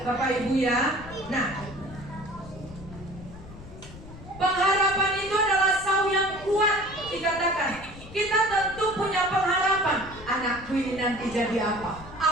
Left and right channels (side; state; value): left; noise; rumble, 16 dB below the sound